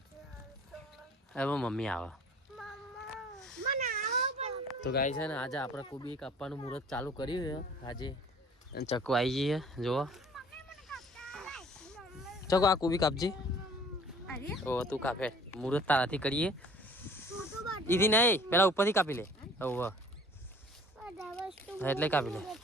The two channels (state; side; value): normal; both; correlation 0.50